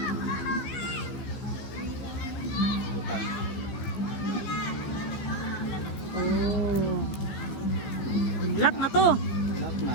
Utang. Lock na to. Lock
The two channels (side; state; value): right; late; 15 ms